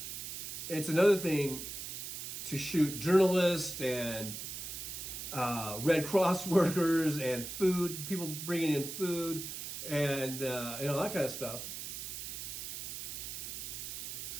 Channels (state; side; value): noise; right; hiss, 7 dB below the sound